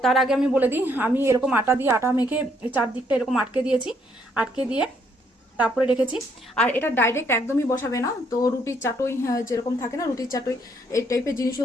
তার আগে আমি বলে দিই, আমি এরকম আটা মেখে চারদিকটা এরকম আটকে দিয়েছি, আটকে দিয়ে তারপরে রেখেছি। আর এটা ডাইরেক্ট একদমই বসাবে না, তো রুটির চাটুই যেরকম থাকে না, রুটির চাটুই এই টাইপের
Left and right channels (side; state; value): both; normal; correlation 0.70